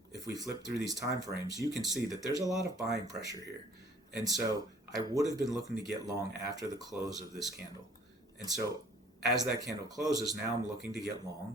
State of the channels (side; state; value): both; normal; correlation 0.56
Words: if we flip through these time frames, you can see that there's a lot of buying pressure here. And so I would have been looking to get long after the close of this candle. And so as that candle closes, now I'm looking to get